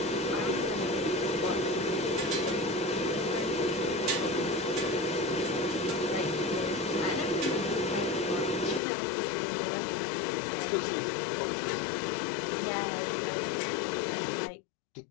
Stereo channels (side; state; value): right; drops out; at 8.8 s